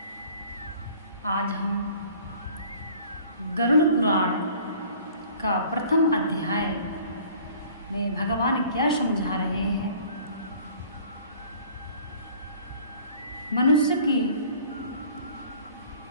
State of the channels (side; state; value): both; inverted; correlation -0.51